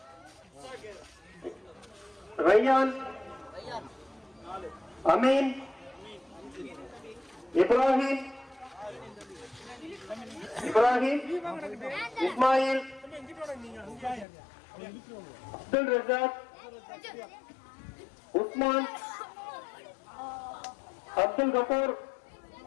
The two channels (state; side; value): drops out; right; at 14.2 s